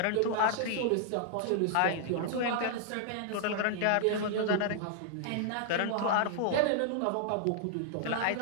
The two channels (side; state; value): both; different; correlation -0.01